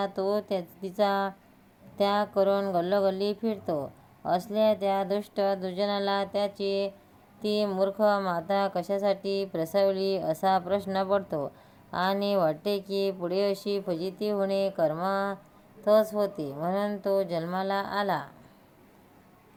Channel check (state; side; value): identical; both; correlation 1.00